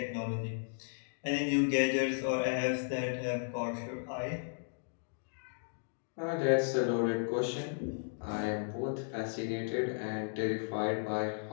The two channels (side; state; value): right; silent; digital silence